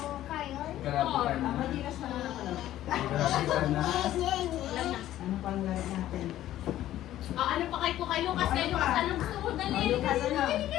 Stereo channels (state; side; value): quieter; right; 13.3 dB